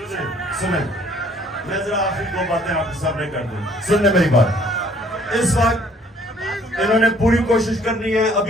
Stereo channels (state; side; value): normal; both; correlation 0.59